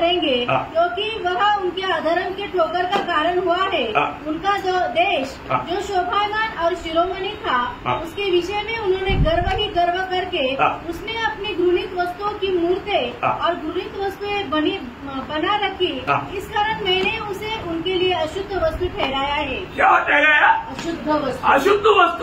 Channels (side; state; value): both; identical; correlation 1.00